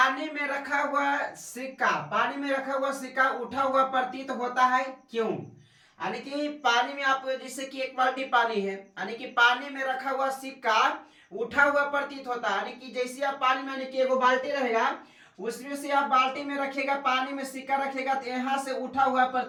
में रखा हुआ सिक्का उठा हुआ प्रतीत होता है, क्यों? यानी कि पानी में आप जैसे कि एक बाल्टी पानी है, यानी कि पानी में रखा हुआ सिक्का उठा हुआ प्रतीत होता है। यानी कि जैसे आप पानी में, यानी कि एगो बाल्टी रहेगा, उसमें से आप बाल्टी में रखेगा, पानी में सिक्का रखेगा, तो यहाँ से उठा हुआ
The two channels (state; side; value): identical; both; correlation 1.00